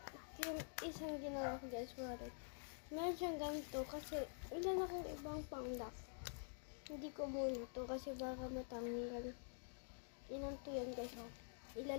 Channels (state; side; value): silent; right; digital silence